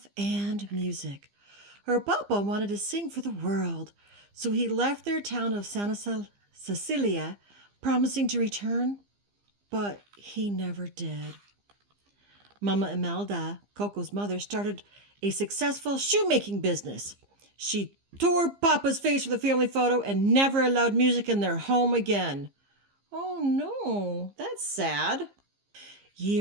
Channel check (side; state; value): left; late; 15 ms